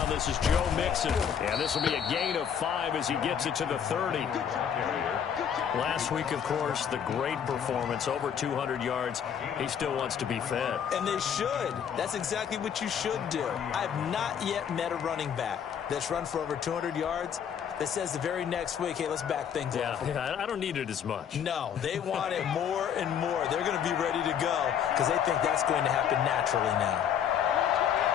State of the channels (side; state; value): right; quieter; 8.3 dB